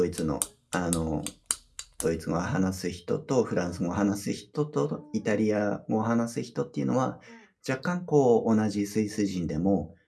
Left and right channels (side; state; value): both; identical; correlation 1.00